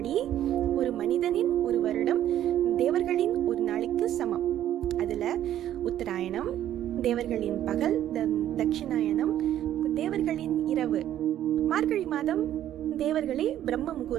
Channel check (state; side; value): quieter; left; 11.7 dB